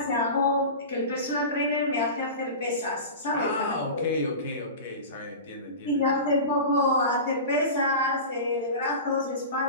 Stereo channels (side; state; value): both; inverted; correlation -0.30